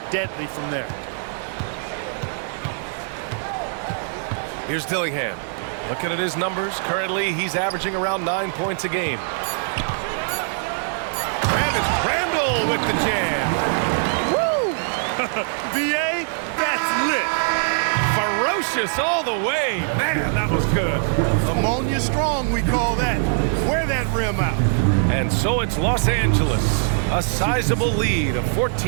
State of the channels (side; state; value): left; silent; digital silence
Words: deadly from there. Here's Dillingham. Looking at his numbers, currently he's averaging around 9 points a game. And it's Randall with the jam. Woo! VA, that's lit. Ferocious all the way. Man, that was good. Ammonia strong, we call that. Wear that rim out. And so it's Los Angeles. A sizable lead of